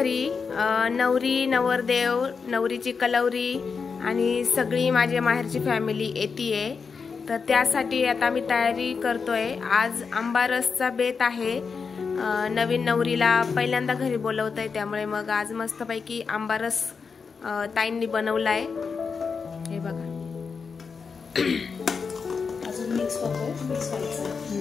नवरी नवरदेव नवरीची कलवरी आणि सगळी माझ्या माहेरची फॅमिली येतीये, तर त्यासाठी आता आम्ही तयारी करतोय। आज आंबारसचा बेत आहे। नवीन नवरीला पहिल्यांदा घरी बोलवतोय, त्यामुळे मग आज मस्तपैकी आंबारस ताईंनी बनवलाय। हे बघा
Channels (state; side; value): quieter; right; 5.4 dB